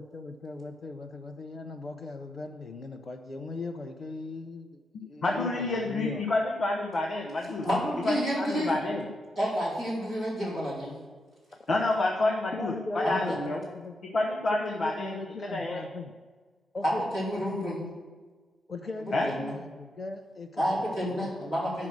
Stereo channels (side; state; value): both; normal; correlation 0.83